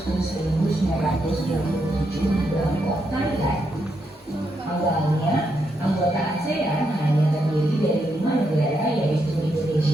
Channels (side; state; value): both; normal; correlation 0.81